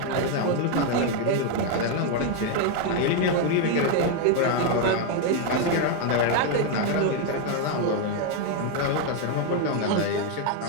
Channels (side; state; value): both; different; correlation 0.01